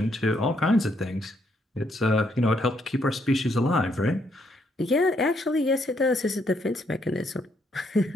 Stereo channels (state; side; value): normal; both; correlation 0.73